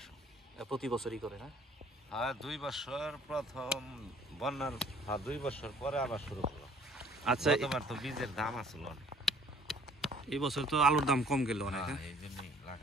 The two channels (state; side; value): normal; both; correlation 0.57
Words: প্রতি বছরই করে না? হ্যাঁ, 2 বছর প্রথম বন্যার 2 বছর পরে আবার শুরু করলো। আচ্ছা, গতবার তো বীজের দাম আসলো অনেক। এই বছর তো আলুর দাম কম গেল অনেক। এই জন্যই